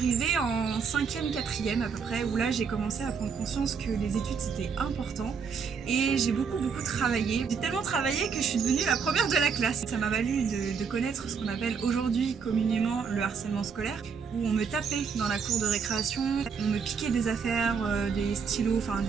en 5e, 4e à peu près, où là j'ai commencé à prendre conscience que les études c'était important et j'ai beaucoup travaillé. J'ai tellement travaillé que je suis devenue la première de la classe. Ça m'a valu de connaître ce qu'on appelle aujourd'hui communément le harcèlement scolaire, où on me tapait dans la cour de récréation, on me piquait des affaires, des stylos, enfin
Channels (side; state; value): left; quieter; 6.0 dB